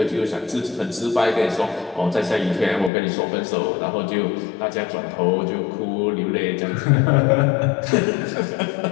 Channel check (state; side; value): drops out; right; at 2.9 s